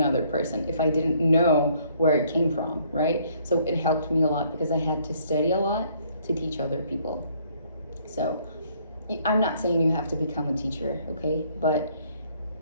person if I didn't know where it came from, right? So it helped me a lot because I had to study a lot to teach other people. So I'm not saying you have to become a teacher, okay? But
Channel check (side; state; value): both; inverted; correlation -0.64